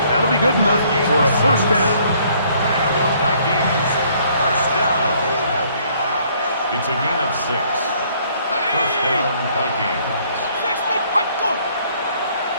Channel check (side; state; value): both; inverted; correlation -0.63